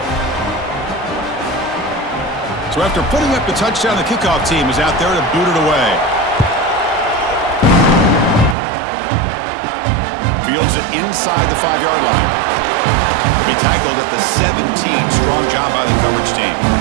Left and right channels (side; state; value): left; drops out; at 8.6 s